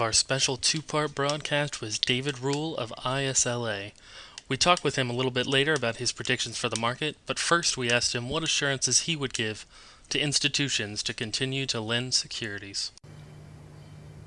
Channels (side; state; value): both; identical; correlation 1.00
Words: our special two-part broadcast with David Rule of ISLA. We talked with him a little bit later about his predictions for the market, but first we asked him what assurances he would give to institutions to continue to lend securities.